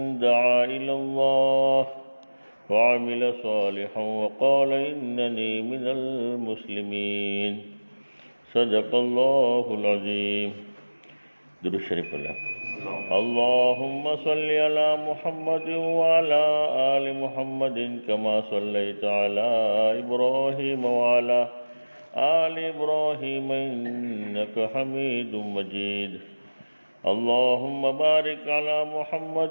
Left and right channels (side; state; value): both; inverted; correlation -1.00